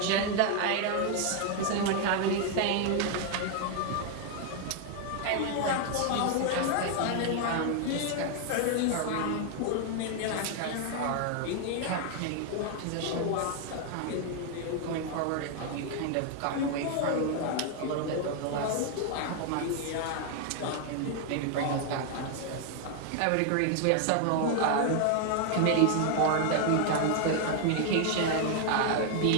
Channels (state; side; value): different; both; correlation 0.00